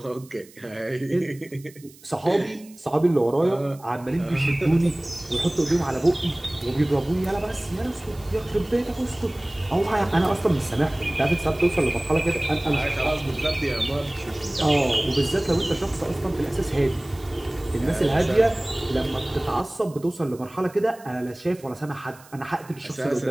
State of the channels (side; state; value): right; noise; hiss, 24 dB below the sound